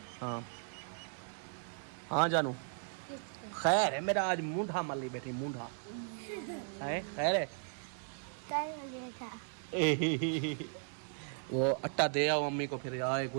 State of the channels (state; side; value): silent; left; digital silence